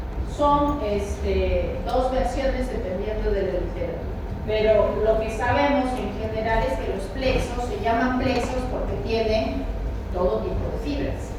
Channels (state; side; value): identical; both; correlation 1.00